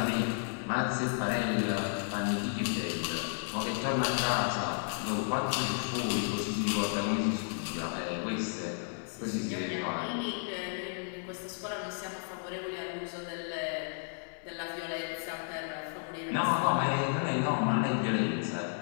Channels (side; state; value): right; silent; 56 dB below the other